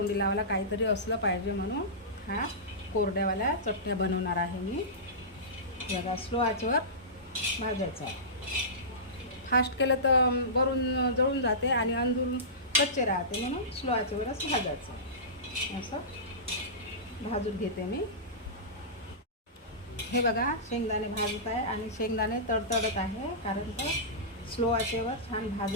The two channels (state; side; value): normal; both; correlation -0.19